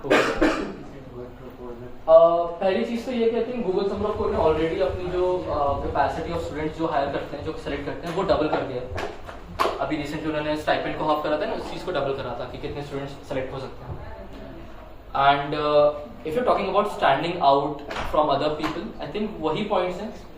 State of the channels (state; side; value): identical; both; correlation 1.00